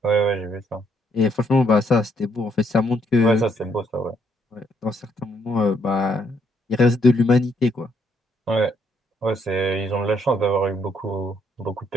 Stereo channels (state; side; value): normal; both; correlation 0.71